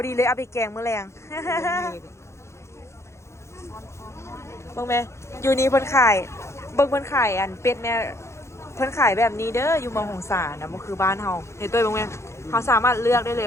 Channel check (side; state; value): right; late; 0.13 ms